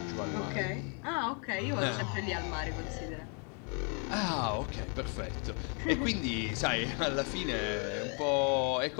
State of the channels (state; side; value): quieter; right; 38.5 dB